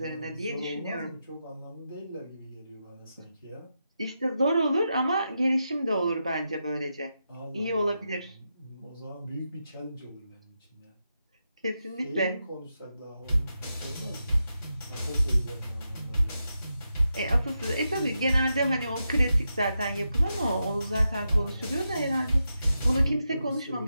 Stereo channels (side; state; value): both; inverted; correlation -0.87